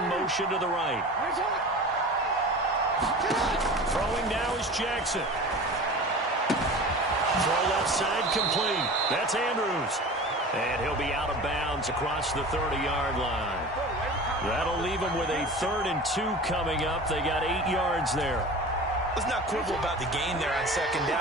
motion to the right. Throwing now is Jackson. Throw left side complete. That's Andrews. And he'll be out of bounds across the 30-yard line. That'll leave him with a 3rd and 2 coming up. They got 8 yards there. Let's not quibble about the gain there on second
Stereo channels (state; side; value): normal; both; correlation 0.36